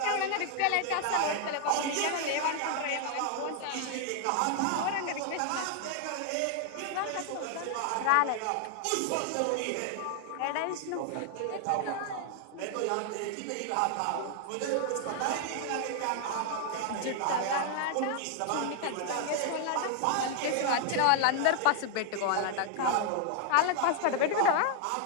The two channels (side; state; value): both; different; correlation 0.00